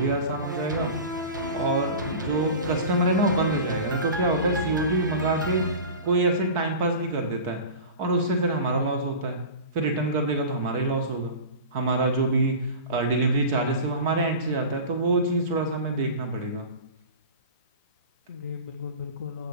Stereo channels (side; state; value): both; inverted; correlation -0.33